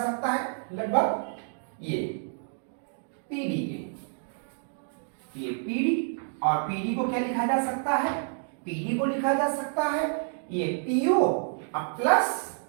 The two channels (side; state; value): left; silent; digital silence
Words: सकता है, लगभग ये PD के, ये PD, और PD को क्या लिखा जा सकता है, PD को लिखा जा सकता है ये PO प्लस